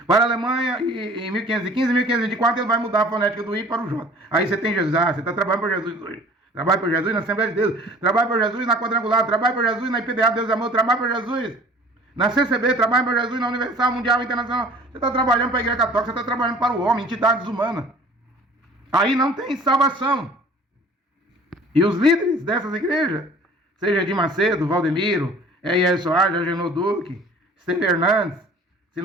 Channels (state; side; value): normal; both; correlation 0.48